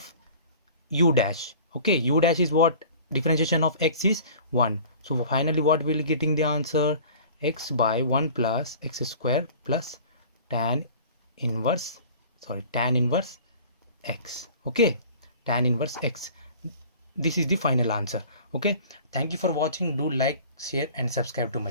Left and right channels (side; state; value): both; inverted; correlation -0.44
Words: u dash. Okay, u dash is what? Differentiation of x is 1. So finally what will getting the answer? X by 1 plus x square plus tan inverse x. Okay, tan inverse x. This is the final answer. Okay, thank you for watching. Do like, share and subscribe to my